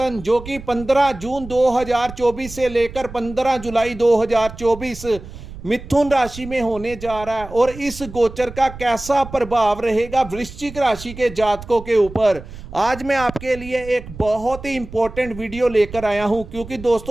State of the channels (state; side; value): noise; right; rumble, 14 dB below the sound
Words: जो कि 15 जून 2024 से लेकर 15 जुलाई 2024 मिथुन राशि में होने जा रहा है। और इस गोचर का कैसा प्रभाव रहेगा वृश्चिक राशि के जातकों के ऊपर, आज मैं आपके लिए एक बहुत ही इंपॉर्टेंट वीडियो लेकर आया हूं। क्योंकि